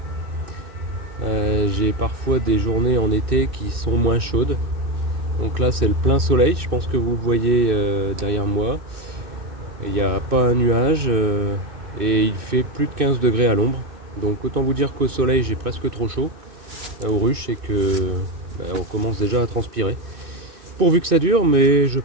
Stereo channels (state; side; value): late; left; 2.6 ms